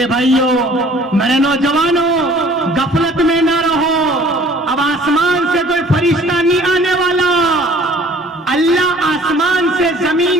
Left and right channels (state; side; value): normal; both; correlation 0.52